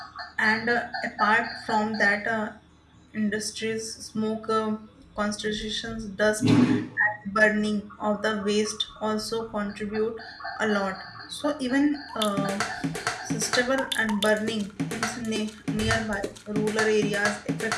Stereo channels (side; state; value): both; identical; correlation 1.00